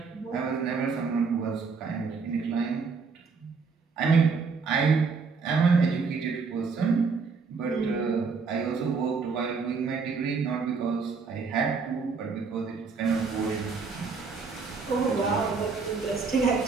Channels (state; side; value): quieter; left; 5.0 dB